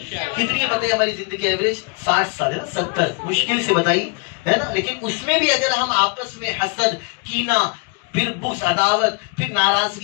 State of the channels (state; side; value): quieter; right; 32.9 dB